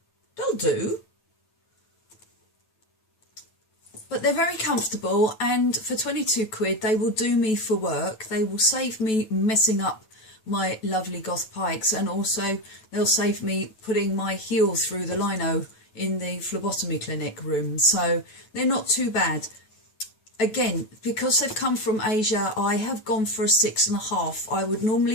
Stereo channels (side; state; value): right; late; 9.1 ms